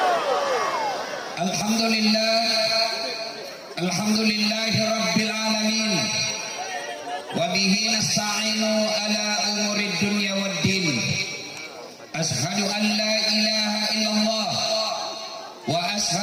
Alhamdulillahi rabbil alamin. Wa bihi nasta'inu ala umurid dunya waddin. Ashhadu an la ilaha illallah wa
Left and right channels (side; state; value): both; identical; correlation 1.00